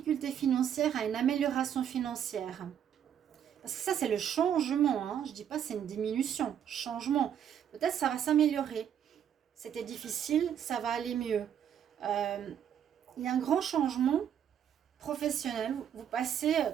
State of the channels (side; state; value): left; quieter; 9.2 dB